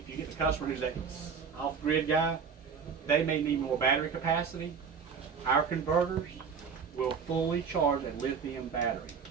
you get the customer who's that off-grid guy, they may need more battery capacity. Our converters will fully charge a lithium battery.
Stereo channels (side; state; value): left; quieter; 6.1 dB